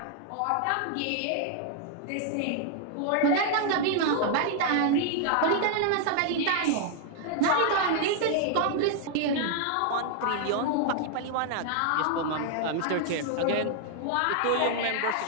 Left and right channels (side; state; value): both; different; correlation 0.00